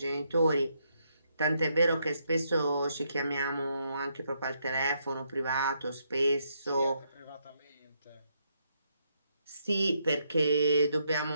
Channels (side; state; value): both; inverted; correlation -0.76